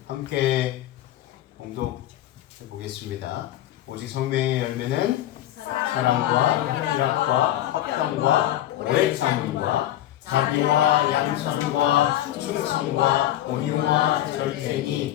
함께 공독해 보겠습니다. 오직 성령의 열매는 사랑과 희락과 화평과 오래 참음과 자비와 양선과 충성과 온유와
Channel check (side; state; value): right; quieter; 13.2 dB